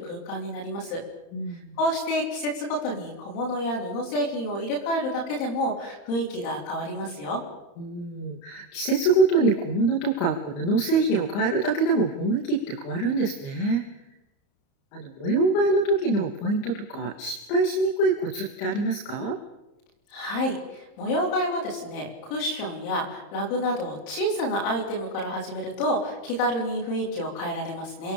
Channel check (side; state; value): right; late; 34 ms